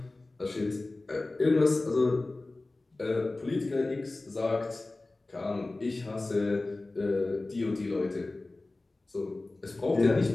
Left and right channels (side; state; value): right; quieter; 3.1 dB